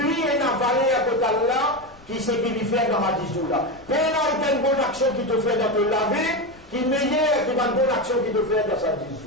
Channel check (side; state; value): left; noise; rumble, 25 dB below the sound